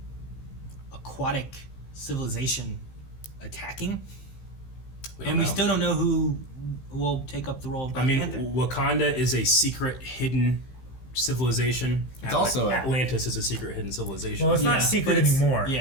aquatic civilization attacking? And we still don't know who will take up the role of Black Panther. Wakanda is a secret, hidden civilization. It's also Atlantis is a secret, hidden civilization. Well, it's not secret anymore.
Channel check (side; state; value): right; late; 15 ms